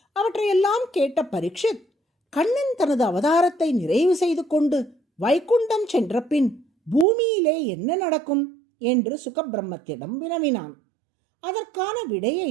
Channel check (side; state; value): left; drops out; at 7.1 s